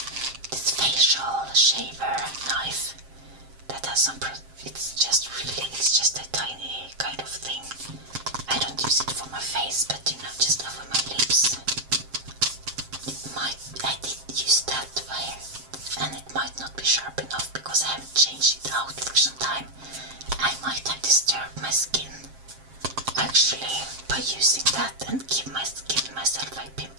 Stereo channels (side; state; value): left; late; 7.5 ms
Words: this facial shaver knife that has some it's just a tiny kind of thing. I don't use it for my face, but just over my lips. I did use that way, and it might not be sharp enough because I haven't changed it out for some time. I might have disturbed my skin actually by using that and give myself a